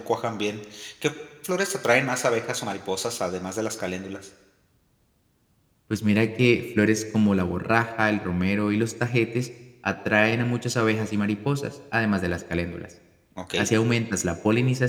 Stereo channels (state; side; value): identical; both; correlation 1.00